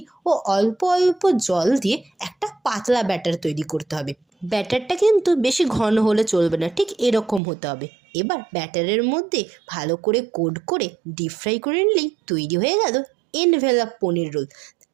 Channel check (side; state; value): left; drops out; at 7.4 s